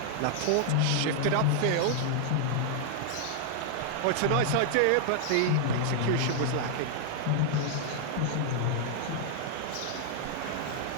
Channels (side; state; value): both; different; correlation -0.01